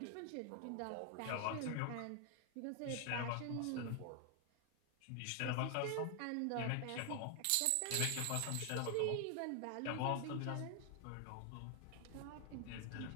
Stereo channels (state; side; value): different; both; correlation 0.00